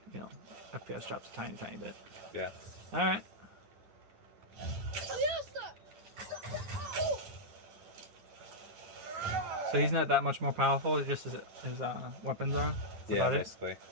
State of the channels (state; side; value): late; left; 9.7 ms